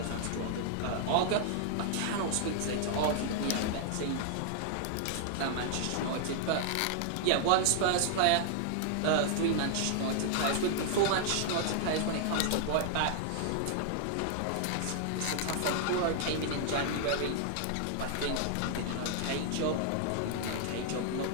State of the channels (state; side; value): different; both; correlation -0.01